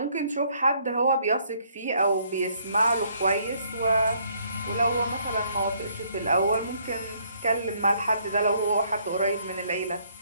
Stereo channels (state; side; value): inverted; both; correlation -0.67